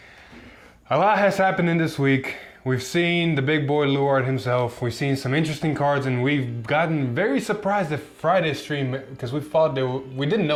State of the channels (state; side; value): identical; both; correlation 1.00